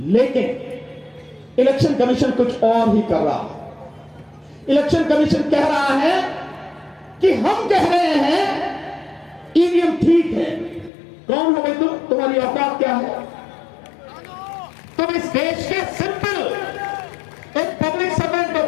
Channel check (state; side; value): drops out; right; at 10.9 s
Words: लेकिन इलेक्शन कमीशन कुछ और ही कर रहा है। इलेक्शन कमीशन कह रहा है कि हम कह रहे हैं ईवीएम ठीक है। कौन हो भाई तुम? तुम्हारी औकात क्या है? तुम इस देश के सिंपल एक पब्लिक सर्वेंट हो।